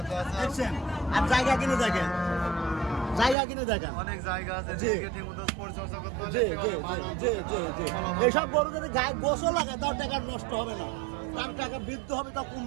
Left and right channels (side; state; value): left; drops out; at 3.4 s